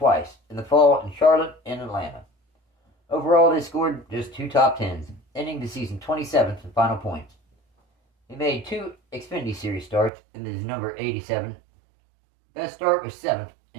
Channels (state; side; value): drops out; left; at 10.1 s